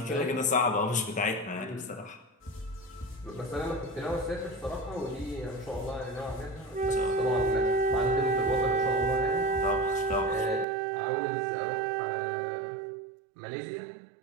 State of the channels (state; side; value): drops out; left; at 10.7 s